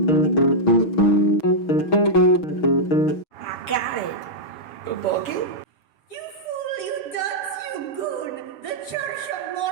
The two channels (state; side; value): late; right; 6.3 ms